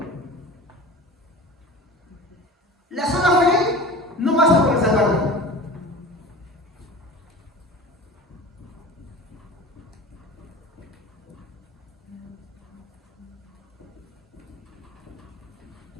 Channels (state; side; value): normal; both; correlation 0.36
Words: La sola fe no basta para salvarlo.